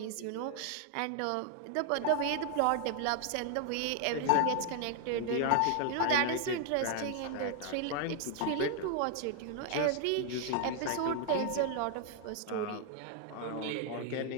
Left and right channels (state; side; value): different; both; correlation 0.00